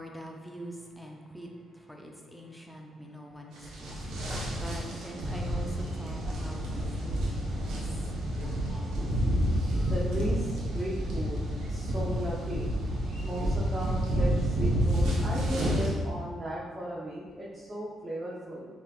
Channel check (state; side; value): normal; both; correlation 0.78